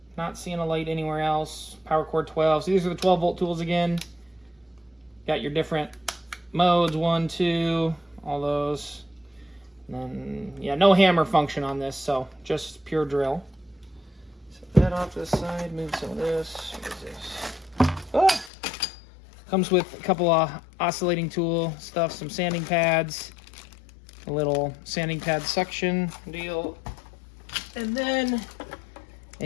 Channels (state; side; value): drops out; right; at 18.5 s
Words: not seeing a light anywhere else. Power Core 12, so these are the 12 volt tools again. Got your different modes, 1, 2, all those. And then, yeah, no hammer function on this, so just pure drill. Set that off to the side, move some of this. What is this? Oh! Comes with a couple of oscillating tool stuff, some sanding pads, a little sanding pad suction deal, and then